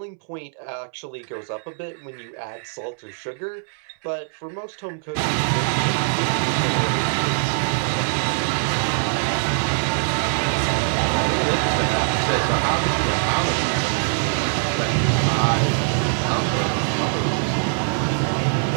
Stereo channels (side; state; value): left; silent; 64 dB below the other